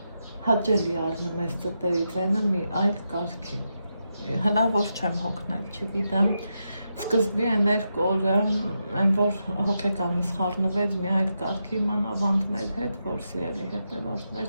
հաճելի առնում ես ծտերի վենը մի այլ կարգի, հնավոր չեմ հոգնել, չգիտեմ, սկզբի են երկու օրը, այն որ հոգեկանս խառնվեց մի այլ կարգի մանավանդ մեր հետ, որ սիրելի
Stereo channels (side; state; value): both; inverted; correlation -0.86